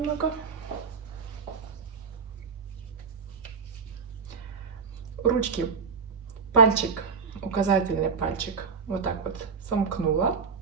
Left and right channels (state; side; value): quieter; left; 5.6 dB